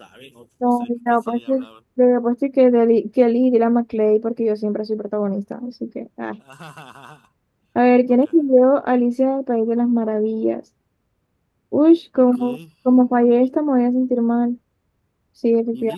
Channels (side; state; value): both; identical; correlation 1.00